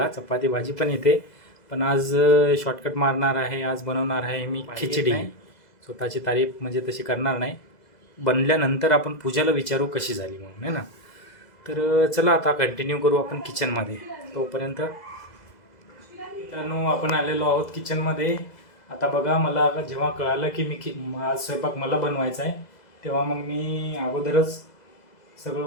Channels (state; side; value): late; right; 2.0 ms